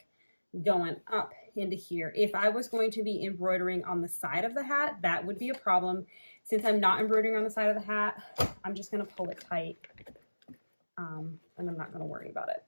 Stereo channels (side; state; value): both; inverted; correlation -1.00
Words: going up into here. If I was going to be embroidering on the side of the hat, that would be a problem. Since I'm not embroidering on the side of the hat, I'm just going to pull it tight, and I'm not going to worry about it.